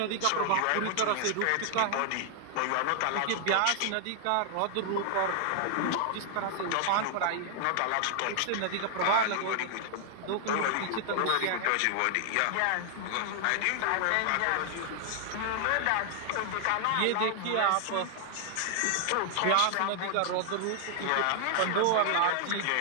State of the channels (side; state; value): both; different; correlation 0.00